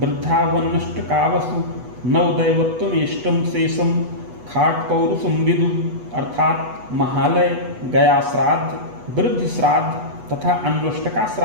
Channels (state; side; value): late; left; 8.1 ms